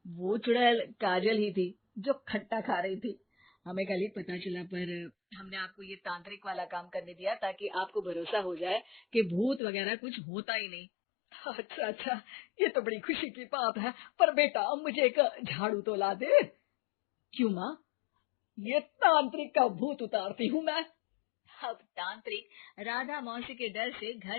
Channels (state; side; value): drops out; right; at 9.6 s